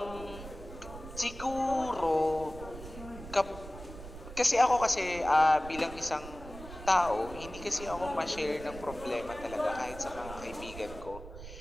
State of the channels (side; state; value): right; noise; rumble, 13 dB below the sound